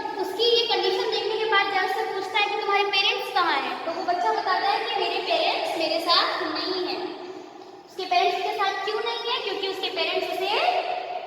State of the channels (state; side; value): identical; both; correlation 1.00